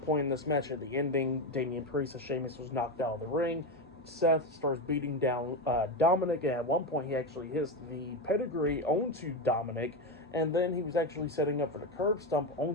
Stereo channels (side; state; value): both; normal; correlation 0.14